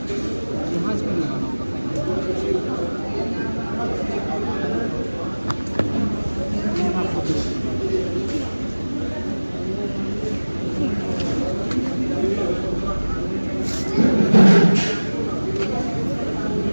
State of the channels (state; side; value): inverted; both; correlation -1.00